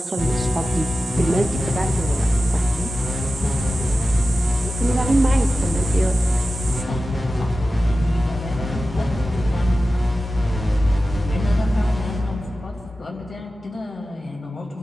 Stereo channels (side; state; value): both; normal; correlation 0.94